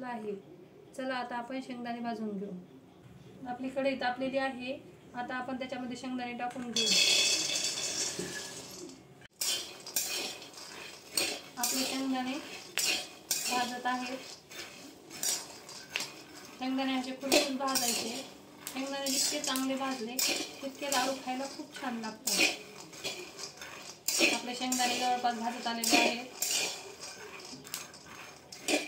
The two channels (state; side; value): identical; both; correlation 1.00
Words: आहे। चला आता आपण शेंगदाणे भाजून घेऊ। आपली कढई तापलेली आहे। आता आपण त्याच्यामध्ये शेंगदाणे टाकून घेऊ। आपले शेंगदाणे भाजत आहेत। शेंगदाणे असे कुरकुरीत भाजायचे। शेंगदाणे जितके चांगले भाजले तितके लाडू खायला खूप छान लागतात। आपले शेंगदाणे जवळपास भाजत आलेले आहेत।